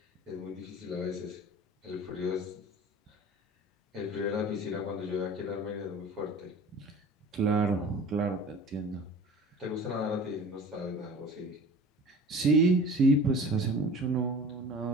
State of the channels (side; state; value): both; normal; correlation 0.41